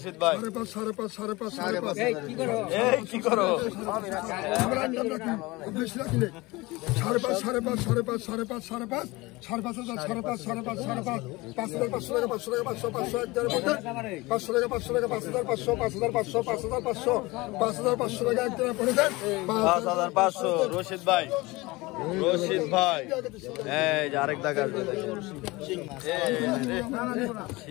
ভাই, 5.5 কি করো 5500 রশিদ ভাই, এই যে আরেক দাগ আসবে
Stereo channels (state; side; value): quieter; right; 22.2 dB